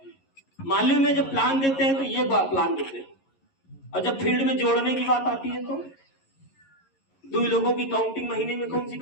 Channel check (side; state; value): right; late; 11 ms